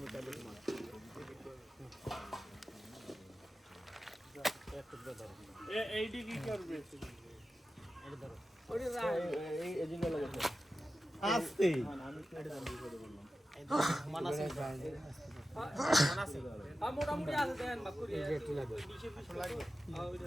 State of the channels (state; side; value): normal; both; correlation 0.93